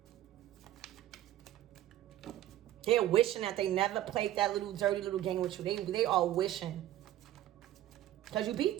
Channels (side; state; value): left; quieter; 13.3 dB